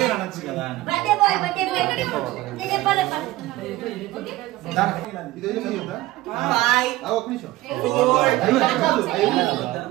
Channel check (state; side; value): quieter; left; 17.5 dB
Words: అనొచ్చు కదా అని. బర్త్డే బాయ్ నేను చెప్పాలి. ఇదేదో చెప్తా. బాయ్. ఒక్క నిమిషం.